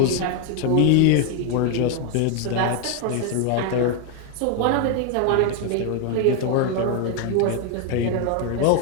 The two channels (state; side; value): different; both; correlation 0.00